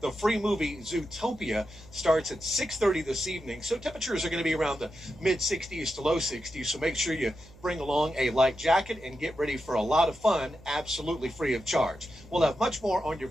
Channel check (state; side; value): noise; right; hum, 23 dB below the sound